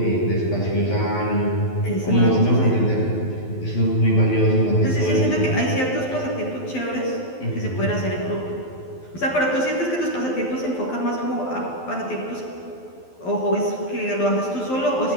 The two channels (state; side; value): late; right; 12 ms